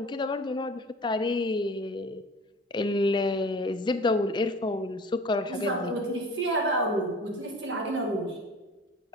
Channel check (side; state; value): both; normal; correlation 0.42